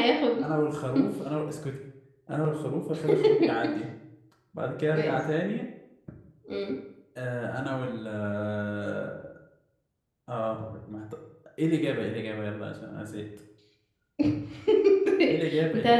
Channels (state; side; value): identical; both; correlation 1.00